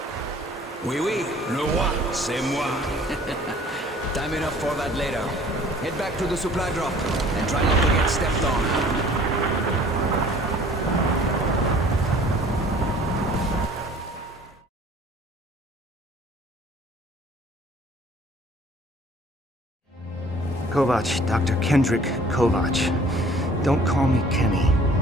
Oui, oui, le roi, c'est moi. Time enough for that later. Head back to the supply drop and try not to get stepped on. Kovac, Dr. Kendrick Kovac. Don't call me Kenny.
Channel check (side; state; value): both; normal; correlation 0.52